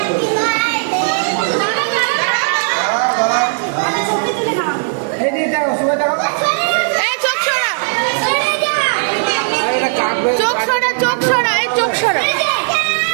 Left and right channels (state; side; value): silent; left; digital silence